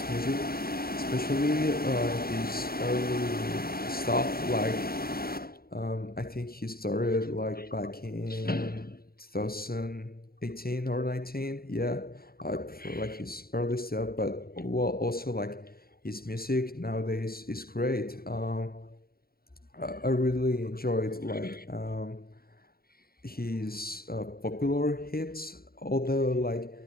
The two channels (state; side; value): late; right; 0.44 ms